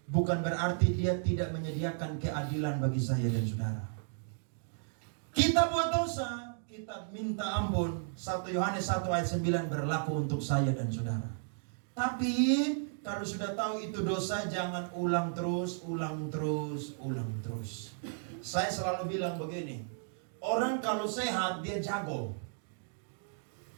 bukan berarti dia tidak menyediakan keadilan bagi saya dan saudara. Kita buat dosa, kita minta ampun. 1 Yohanes 1 ayat 9 berlaku untuk saya dan saudara. Tapi kalau sudah tahu itu dosa, jangan ulang terus. Saya selalu bilang begini, orang kalau sehat dia jago.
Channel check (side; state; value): left; silent; digital silence